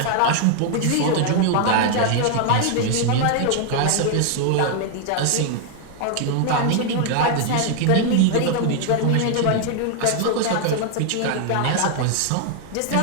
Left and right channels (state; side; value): different; both; correlation 0.00